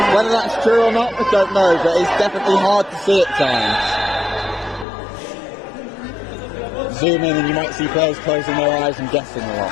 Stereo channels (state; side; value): drops out; right; at 4.9 s